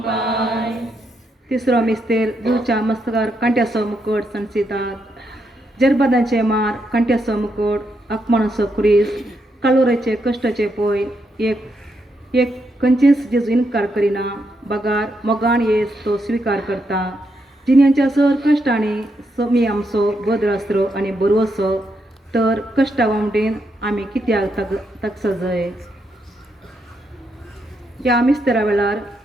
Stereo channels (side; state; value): both; normal; correlation 0.80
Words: पाय. तिसरो मिस्तेर जीवच्या मस्तकार कांट्याचो मुकुट सणसितात जरबदांचे मार कांट्याचो मुकुट आत्मानसो क्रिस कालोरेचे कश्टाचे पय एक खंयचेच जेजू इन्कार करिना बगार मोगान येस तो स्वीकार करता जिन्यांच्या सर कश्टांनी समी आमचो बद्रास्त्रो आनी बरवसो तर कश्टा वांगडेन आमी कित्याक तक सजय. ह्या मिस्तेरा वेळार